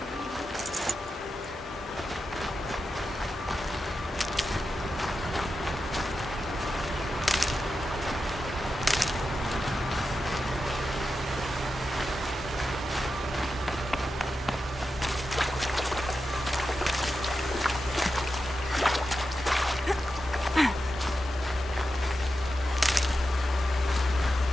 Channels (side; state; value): both; normal; correlation 0.90